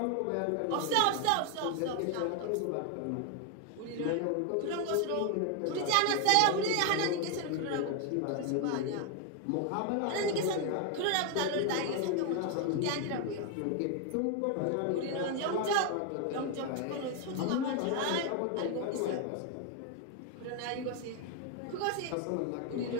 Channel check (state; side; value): different; both; correlation 0.01